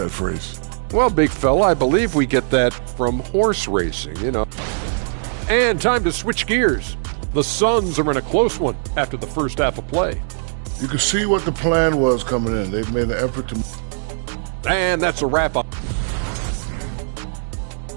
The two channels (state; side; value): silent; left; digital silence